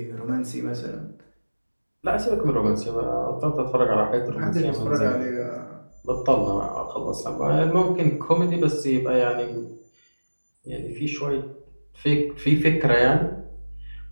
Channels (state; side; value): inverted; both; correlation -1.00